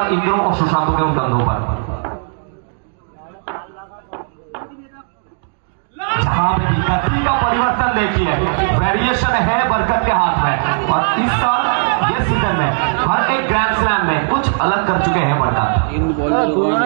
इन दोनों को सुशांत के कंधों पर। जहां पे गति का परिवर्तन देखिए, वेरिएशन है बरकत के हाथ में, और इस साल ये सीजन में हर एक ग्रैंड स्लैम में कुछ अलग कर चुके हैं बरकत। इन बॉलर दोनों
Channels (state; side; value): silent; left; digital silence